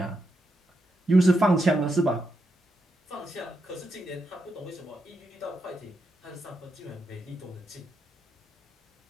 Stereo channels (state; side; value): normal; both; correlation 0.84